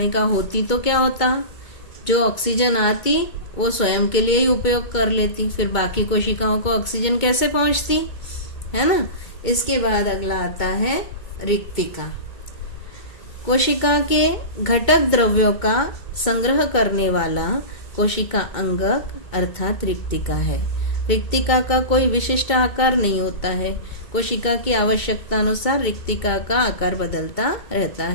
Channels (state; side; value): late; right; 2.2 ms